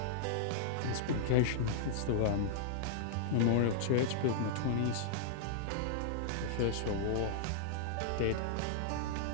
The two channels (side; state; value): both; different; correlation -0.01